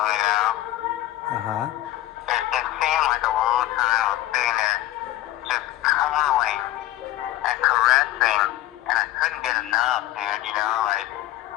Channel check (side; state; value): right; quieter; 15.0 dB